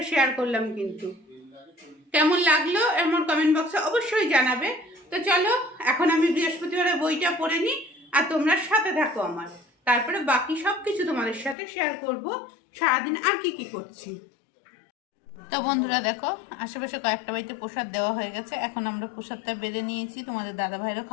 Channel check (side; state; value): right; drops out; at 11.6 s